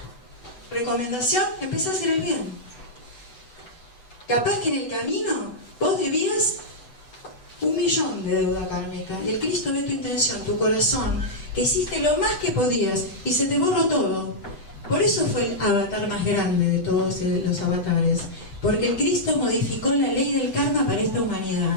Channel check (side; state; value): right; late; 8.0 ms